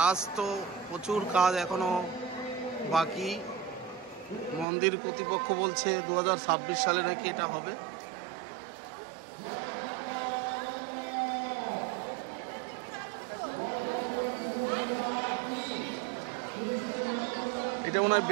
তো প্রচুর, কাজ এখনো বাকি। মন্দির কর্তৃপক্ষ বলছে 2026 সালে নাকি এটা হবে। এটা মনে হয়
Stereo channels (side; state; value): left; drops out; at 4.7 s